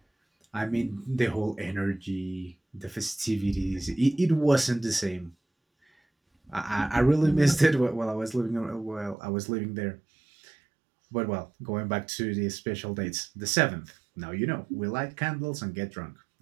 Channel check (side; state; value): left; drops out; at 9.2 s